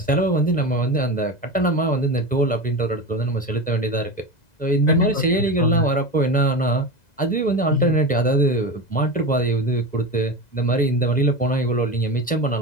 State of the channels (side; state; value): right; late; 2.0 ms